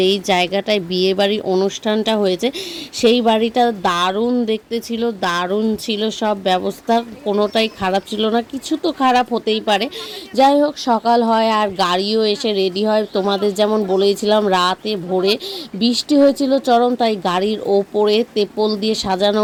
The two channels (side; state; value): both; identical; correlation 1.00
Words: জায়গাটায় বিয়ে বাড়ির অনুষ্ঠানটা হয়েছে সেই বাড়িটা দারুণ দেখতে ছিল, দারুণ ছিল সব ব্যবস্থা, কোনোটাই খারাপ ছিল না। কিছু তো খারাপ হতেই পারে, যাই হোক সকাল হয় আর গাড়িও এসে রেডি হয়। তোমাদের যেমন বলেছিলাম, রাতে ভোরে বৃষ্টি হয়েছিল চরম, তাই গাড়ির ওপরে তেপল দিয়ে সাজানো